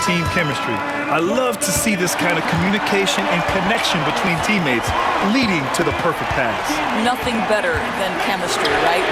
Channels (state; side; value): identical; both; correlation 1.00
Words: team chemistry. I love to see this kind of communication and connection between teammates leading to the perfect pass. Nothing better than chemistry, right?